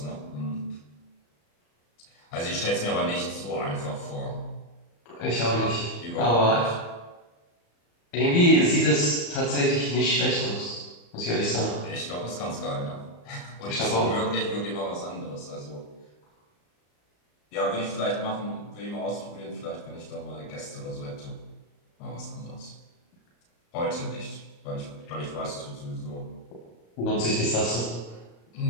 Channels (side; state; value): right; late; 34 ms